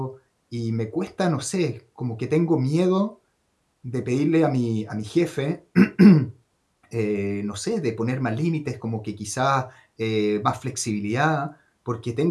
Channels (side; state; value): both; identical; correlation 1.00